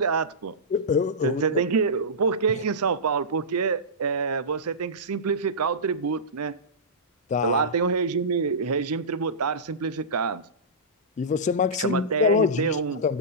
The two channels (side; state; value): both; normal; correlation -0.18